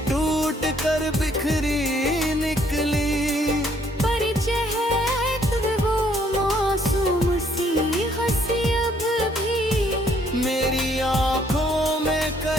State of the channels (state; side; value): normal; both; correlation 0.66